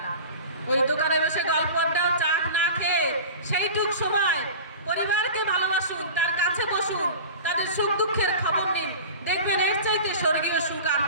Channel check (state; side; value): inverted; both; correlation -0.35